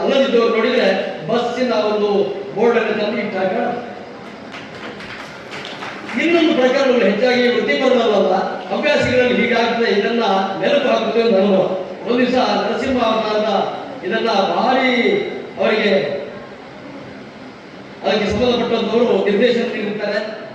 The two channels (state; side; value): identical; both; correlation 1.00